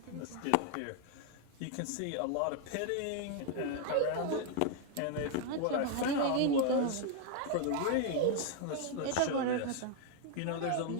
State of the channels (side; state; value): both; different; correlation 0.00